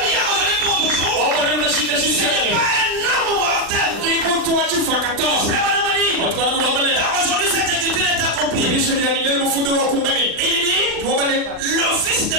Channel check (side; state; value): left; late; 39 ms